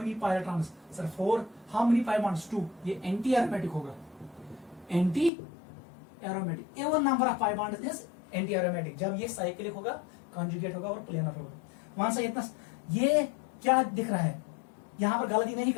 pi electrons? Sir 4। How many pi bonds? 2। ये एंटी एरोमेटिक होगा, anti aromatic. Even number of pi bonds is anti aromatic जब ये साइक्लिक होगा, कॉन्जुगेट होगा और प्लेनर होगा। वहां से इतना ये क्या दिख रहा है? यहां पर गलती नहीं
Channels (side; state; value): right; drops out; at 5.3 s